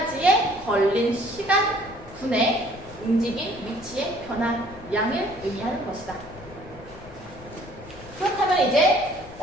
걸린 시간분의 움직인 위치의 변화량을 의미하는 것이다. 그렇다면 이제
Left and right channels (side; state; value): left; noise; rumble, 19 dB below the sound